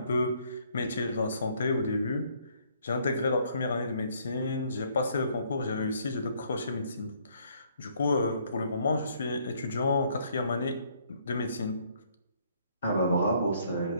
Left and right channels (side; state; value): both; inverted; correlation -0.65